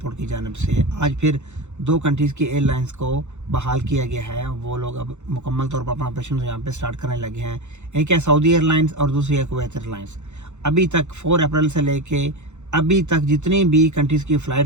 की जानिब से आज फिर दो कंट्रीज़ की एयरलाइंस को बहाल किया गया है। वो लोग अब मुकम्मल तौर पर अपना ऑपरेशन यहाँ पे स्टार्ट करने लगे हैं। एक है सऊदी एयरलाइंस और दूसरी है कुवैत एयरलाइंस। अभी तक 4 अप्रैल से लेके अभी तक जितनी भी कंट्रीज़ की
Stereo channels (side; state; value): left; late; 0.83 ms